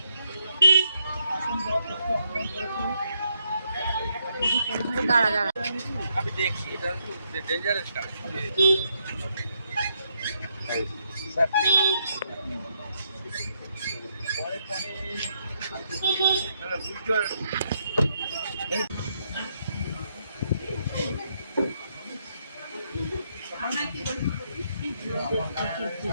দাঁড়া দাঁড়া আমি দেখছি এটা একটু ডেঞ্জারাস কাজ।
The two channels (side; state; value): both; inverted; correlation -0.75